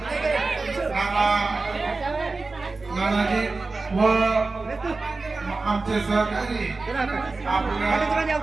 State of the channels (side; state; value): left; quieter; 3.7 dB